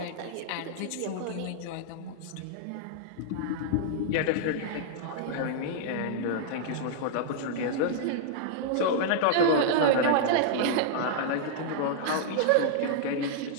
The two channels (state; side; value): different; both; correlation -0.01